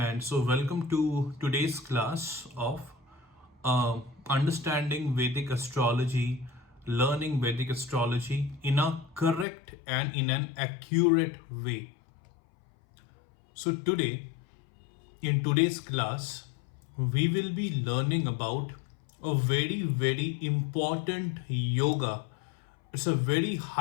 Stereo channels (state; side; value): drops out; right; at 9.5 s